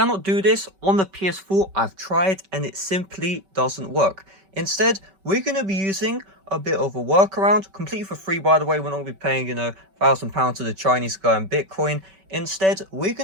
do this on the PS4. I've tried and it simply doesn't work. Instead, we're going to be using a bit of a workaround, completely for free by the way. We're not going to be paying, £1,000 to the Chinese guy in Bitcoin. Instead, we're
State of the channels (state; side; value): late; left; 5.2 ms